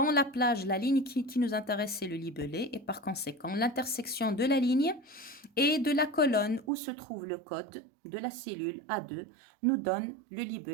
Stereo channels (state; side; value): drops out; left; at 6.7 s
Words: la plage, la ligne qui nous intéresse, c'est le libellé. Et par conséquent, l'intersection de la ligne et de la colonne où se trouve le code de la cellule A2 nous donne le